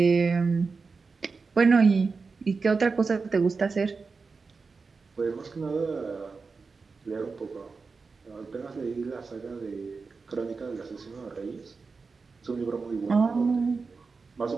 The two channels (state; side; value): quieter; left; 4.5 dB